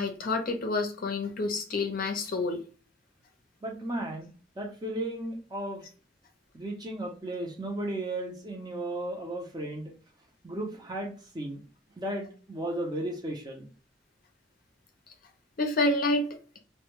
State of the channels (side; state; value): both; normal; correlation 0.34